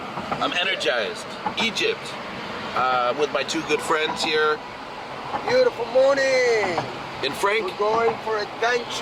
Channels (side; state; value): both; identical; correlation 1.00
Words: I'm energized. Egypt. With my two good friends here. Beautiful morning. And Frank. We're going for